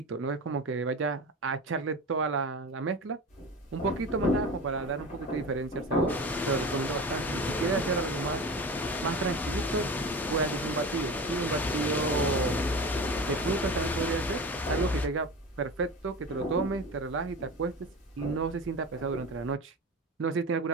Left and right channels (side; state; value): both; normal; correlation 0.30